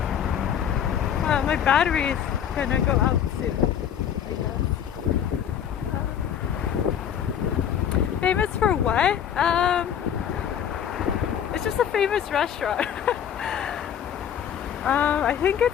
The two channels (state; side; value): quieter; right; 9.1 dB